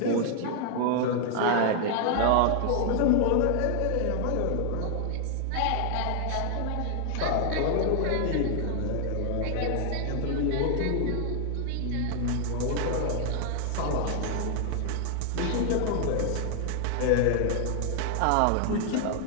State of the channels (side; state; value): both; different; correlation 0.00